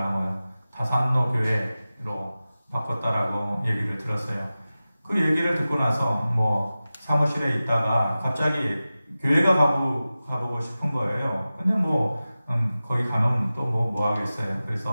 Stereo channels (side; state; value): both; inverted; correlation -0.95